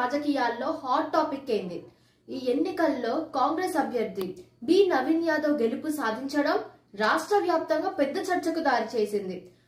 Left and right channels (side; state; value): both; identical; correlation 1.00